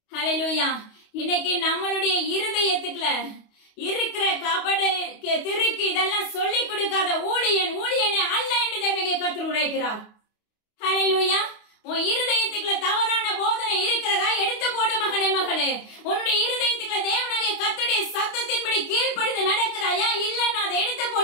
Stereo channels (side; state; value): right; late; 28 ms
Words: ஹல்லேலூயா. இன்னைக்கு நம்மளுடைய இருதயத்துக்குள்ள இருக்கிற கபடு திருக்கு இதெல்லாம் சொல்லி கொடுக்காத ஊழியனே அல்ல என்று தேவனுடைய கர்த்தர் உரைக்கிறார். ஹல்லேலூயா. உன் இருதயத்துக்குள்ள தவறான போதனை இருக்கிறதா? எடுத்து போடு மகனே மகளே. உன்னுடைய இருதயத்துக்குள்ள தேவனுடைய கர்த்தருடைய சத்தத்தின்படி கீழ்ப்படிந்து நடக்கிறாயா? இல்ல, நான் அதை எடுத்து